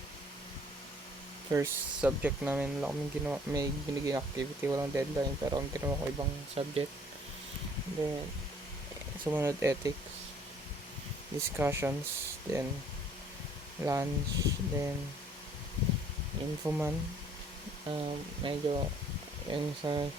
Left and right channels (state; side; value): normal; both; correlation 0.59